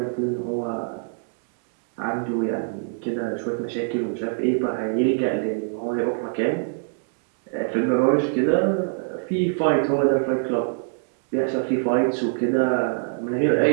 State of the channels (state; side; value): silent; left; digital silence